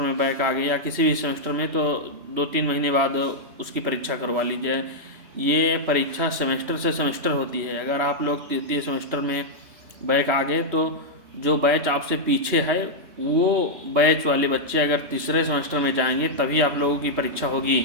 में बैक आ गए या किसी भी सेमेस्टर में तो 2-3 महीने बाद उसकी परीक्षा करवा लीजिए। ये परीक्षा सेमेस्टर से सेमेस्टर होती है। अगर आप लोग तृतीय सेमेस्टर में बैक आ गए तो जो बैच आपसे पीछे है वो बैच वाले बच्चे अगर तीसरे सेमेस्टर में जाएंगे तभी आप लोगों की परीक्षा होगी।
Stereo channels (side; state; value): left; late; 3.2 ms